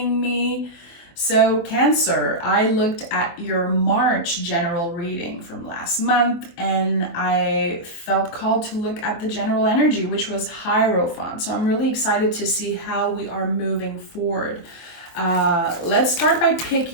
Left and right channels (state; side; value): late; right; 24 ms